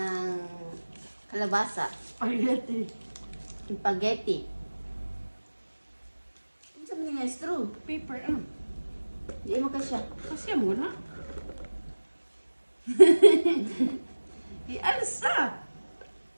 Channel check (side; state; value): both; inverted; correlation -1.00